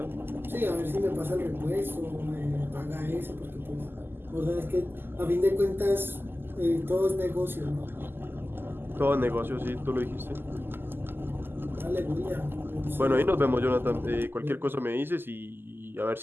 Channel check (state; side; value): late; left; 0.099 ms